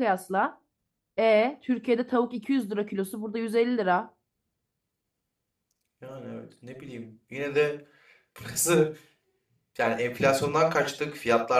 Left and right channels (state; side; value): identical; both; correlation 1.00